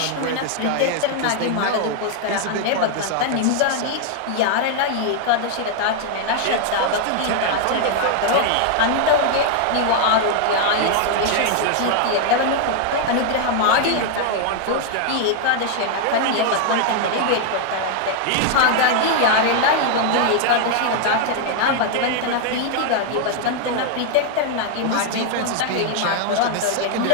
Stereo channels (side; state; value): both; different; correlation 0.00